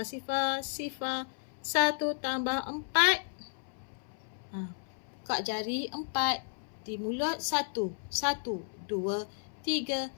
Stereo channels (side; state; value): right; silent; 56 dB below the other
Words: sifar, 1 tambah 4. Buka jari 4. Di mulut 1. 1, 2, 3,